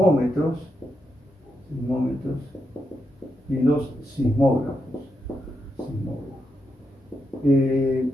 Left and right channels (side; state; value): both; normal; correlation 0.84